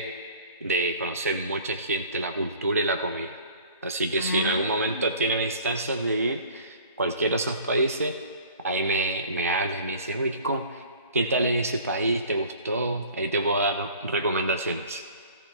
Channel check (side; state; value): both; inverted; correlation -0.47